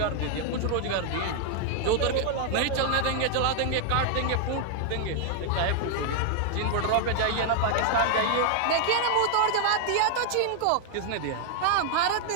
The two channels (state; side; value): different; both; correlation 0.00